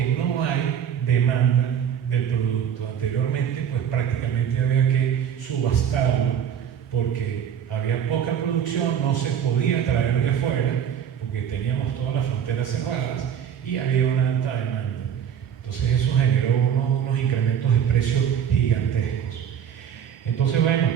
no hay demanda del producto. Anteriormente, pues prácticamente había que subastarlo porque había poca producción, no se podía traer de fuera porque teníamos todas las fronteras cerradas y había una alta demanda. Entonces eso generó unos incrementos de precios gigantescos. Entonces, bueno,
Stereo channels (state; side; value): quieter; left; 8.7 dB